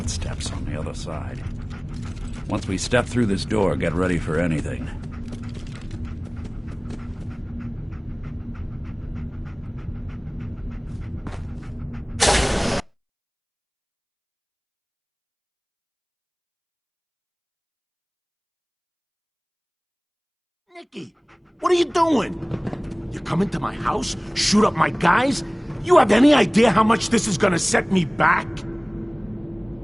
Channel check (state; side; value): identical; both; correlation 1.00